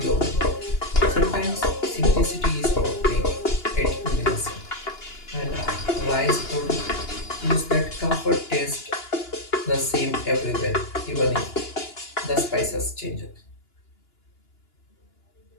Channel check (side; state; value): right; late; 2.9 ms